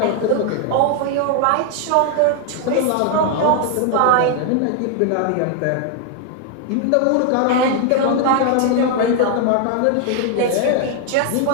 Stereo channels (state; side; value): different; both; correlation 0.00